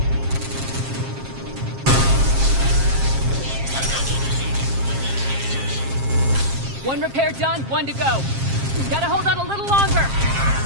One repair done, one to go. Gotta hold on a little longer.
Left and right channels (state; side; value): late; left; 7.5 ms